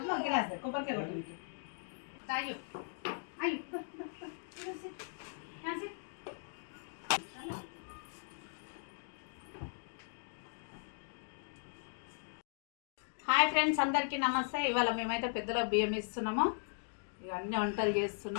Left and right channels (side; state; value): right; silent; digital silence